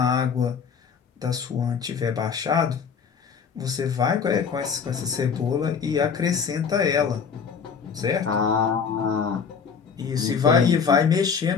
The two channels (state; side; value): quieter; right; 6.3 dB